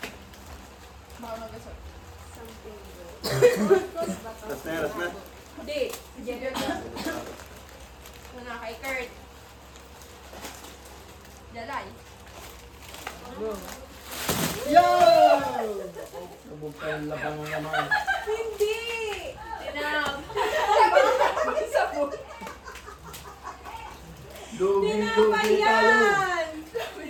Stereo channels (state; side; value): identical; both; correlation 1.00